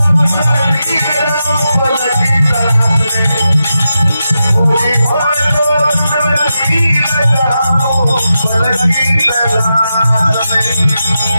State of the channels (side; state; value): both; inverted; correlation -0.88